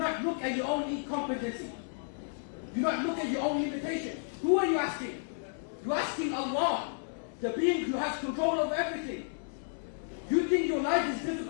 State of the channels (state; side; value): silent; right; digital silence